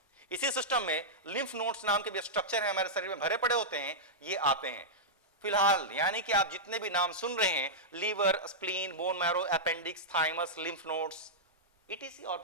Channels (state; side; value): normal; both; correlation -0.10